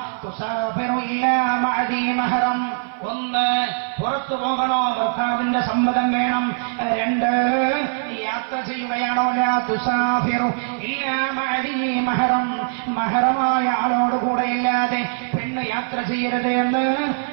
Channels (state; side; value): silent; left; 56 dB below the other